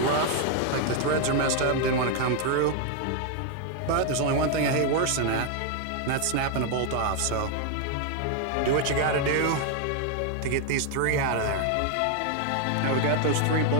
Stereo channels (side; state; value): both; different; correlation 0.01